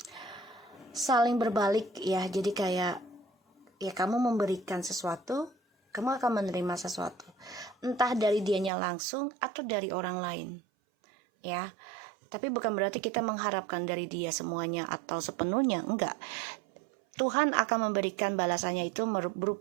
saling berbalik ya. Jadi kayak ya kamu memberikan sesuatu, kamu akan menerima sesuatu, entah dari dianya langsung atau dari orang lain ya. Tapi bukan berarti kita mengharapkan dari dia semuanya atau sepenuhnya, enggak. Tuhan akan memberikan balasannya itu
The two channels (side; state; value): left; drops out; at 8.7 s